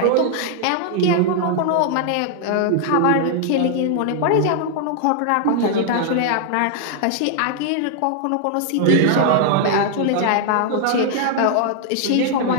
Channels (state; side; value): different; both; correlation 0.00